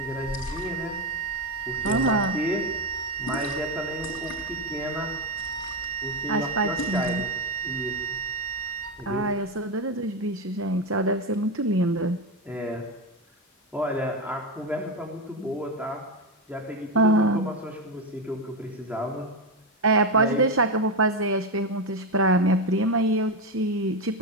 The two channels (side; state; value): both; normal; correlation 0.11